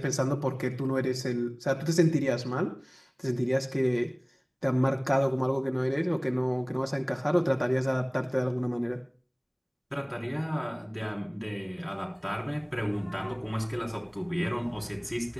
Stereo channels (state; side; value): identical; both; correlation 1.00